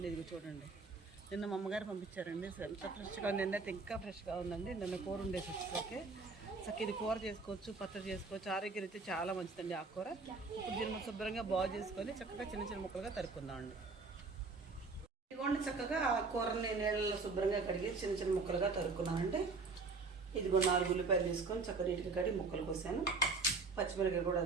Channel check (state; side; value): quieter; left; 4.1 dB